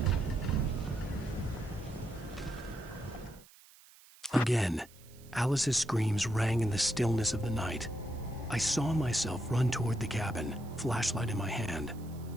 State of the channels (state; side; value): noise; right; hiss, 24 dB below the sound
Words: Again, Alice's screams rang in the stillness of the night. I saw myself run toward the cabin, flashlight in my hand.